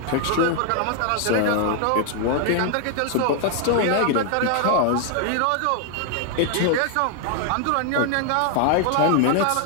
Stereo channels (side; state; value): both; different; correlation 0.00